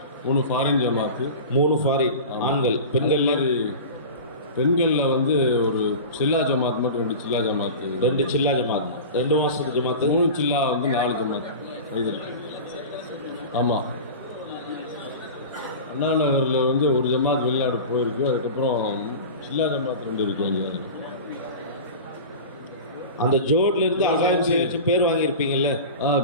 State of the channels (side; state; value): both; inverted; correlation -0.32